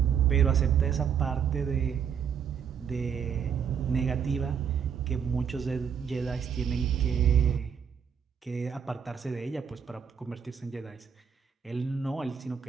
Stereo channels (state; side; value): quieter; left; 7.4 dB